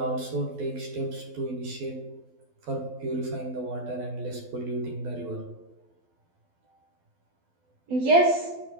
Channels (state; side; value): late; left; 12 ms